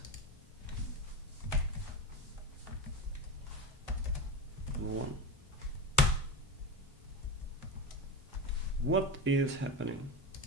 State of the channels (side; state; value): both; normal; correlation 0.21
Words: Number 1. What is happening?